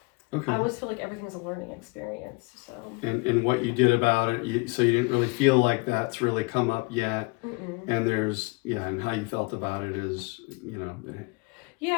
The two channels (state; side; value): quieter; right; 27.9 dB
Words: Okay. I always feel like everything's a learning experience. So. And what you did about it, so you didn't really feel like that's really come up yet. Mm-mm. And and how you felt about it is,